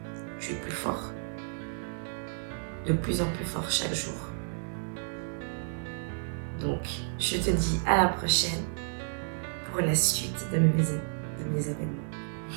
Tu es plus fort, de plus en plus fort chaque jour. Donc, je te dis à la prochaine pour la suite de mes événements.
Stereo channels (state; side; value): silent; left; 57 dB below the other